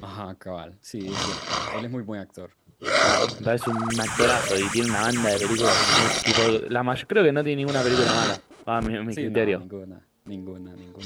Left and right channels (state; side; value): identical; both; correlation 1.00